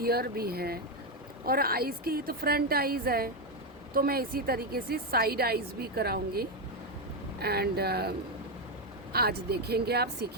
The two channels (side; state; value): both; normal; correlation 0.07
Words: ईयर भी है और आईज़ की तो फ्रंट आईज़ है, तो मैं इसी तरीके से साइड आईज़ भी कराऊंगी. एंड आज देखेंगे, आप